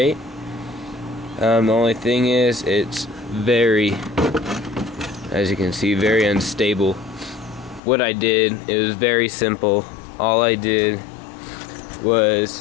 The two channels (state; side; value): drops out; right; at 7.8 s